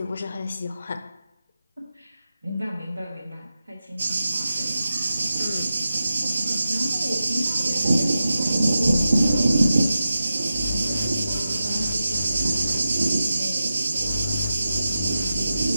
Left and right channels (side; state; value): both; inverted; correlation -0.92